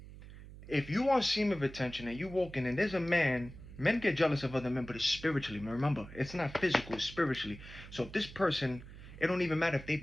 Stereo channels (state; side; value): noise; right; hum, 15 dB below the sound